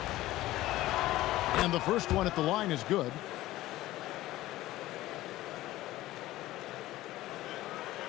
And the first one at the line is good.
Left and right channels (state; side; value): quieter; right; 16.3 dB